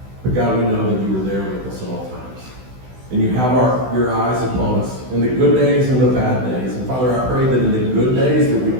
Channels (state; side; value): late; left; 16 ms